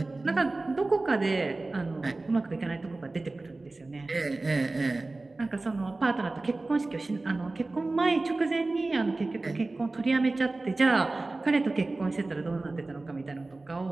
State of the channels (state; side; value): quieter; left; 3.2 dB